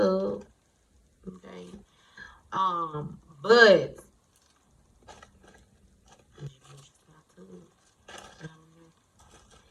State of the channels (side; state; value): both; identical; correlation 1.00